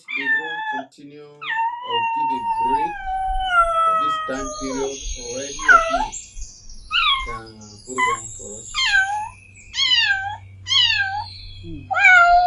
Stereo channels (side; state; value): both; identical; correlation 1.00